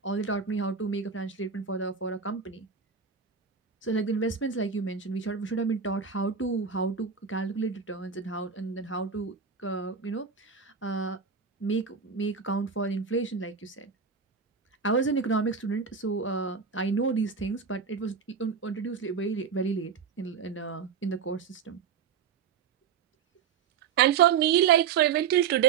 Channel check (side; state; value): left; quieter; 6.3 dB